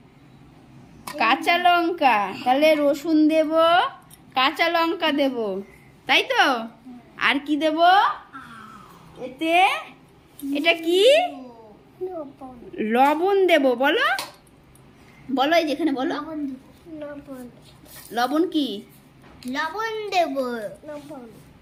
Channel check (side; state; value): both; identical; correlation 1.00